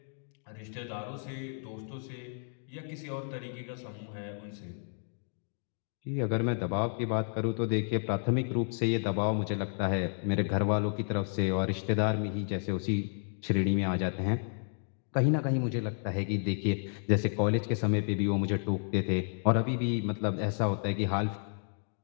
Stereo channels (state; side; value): silent; right; 57 dB below the other